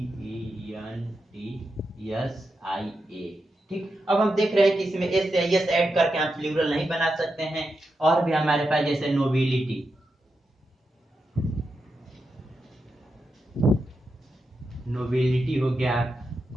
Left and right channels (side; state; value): both; normal; correlation 0.87